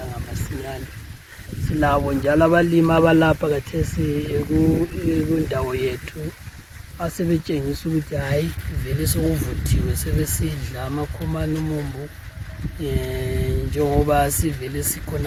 masinyane. Silabo njalo abalimi abalapha khathesi kundawo yethu asebetshengisa ukuthi hayi vele sokuvuthiwe, sebesidla amakhomane umumbu. Njengoba sivele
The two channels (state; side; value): identical; both; correlation 1.00